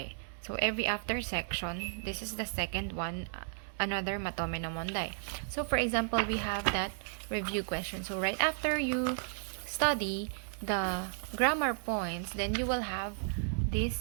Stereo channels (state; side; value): silent; left; digital silence